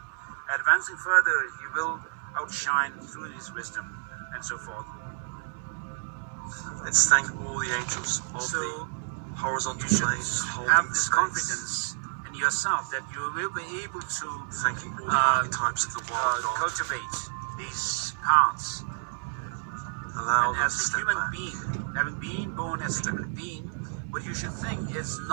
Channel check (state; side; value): silent; left; 58 dB below the other